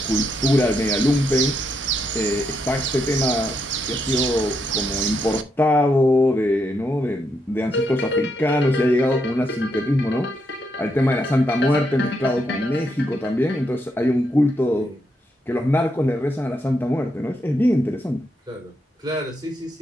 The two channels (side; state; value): both; normal; correlation 0.79